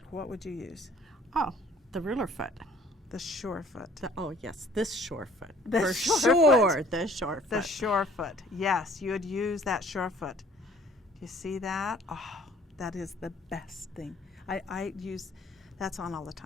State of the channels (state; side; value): normal; both; correlation 0.55